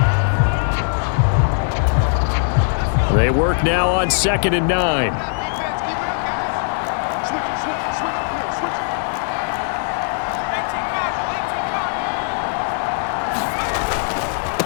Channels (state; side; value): silent; right; 58 dB below the other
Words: They work now on 2nd and 9.